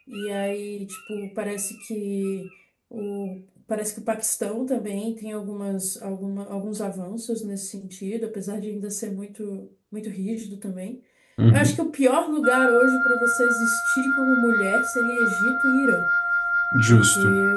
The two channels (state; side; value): identical; both; correlation 1.00